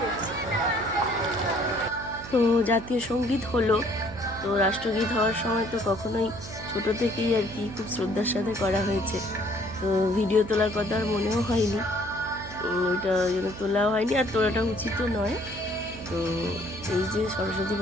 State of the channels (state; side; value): noise; right; hum, 14 dB below the sound